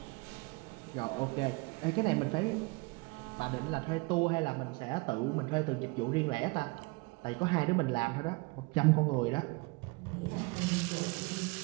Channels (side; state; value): left; quieter; 27.0 dB